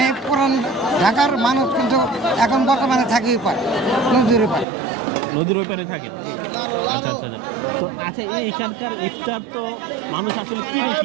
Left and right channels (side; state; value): left; drops out; at 4.7 s